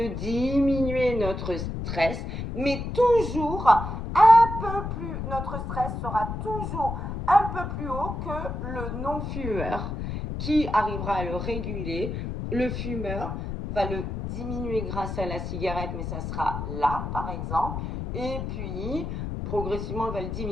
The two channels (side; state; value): left; noise; rumble, 5 dB below the sound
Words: diminuer notre stress, mais toujours un peu plus, notre stress sera toujours un peu plus haut que le non-fumeur qui arrivera à le réguler. Le fumeur va le diminuer grâce à la cigarette, mais ça sera là, par exemple, et puis progressivement, il va le